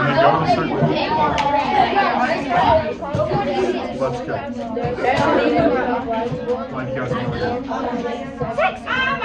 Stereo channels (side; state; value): both; identical; correlation 1.00